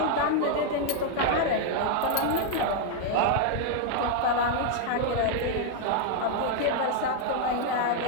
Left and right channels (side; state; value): both; different; correlation 0.00